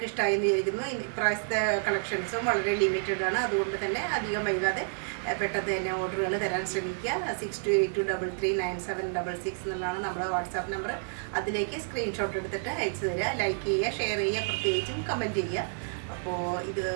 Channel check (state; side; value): silent; left; 58 dB below the other